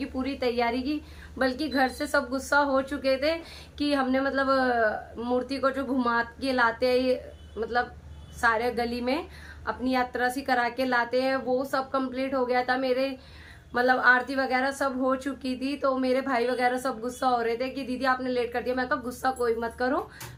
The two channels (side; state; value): both; identical; correlation 1.00